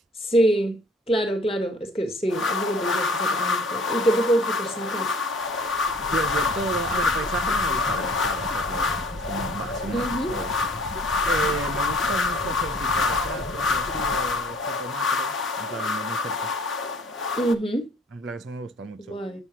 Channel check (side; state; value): both; normal; correlation 0.53